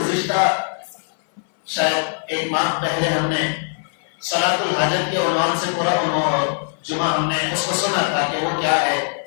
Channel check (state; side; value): silent; right; 58 dB below the other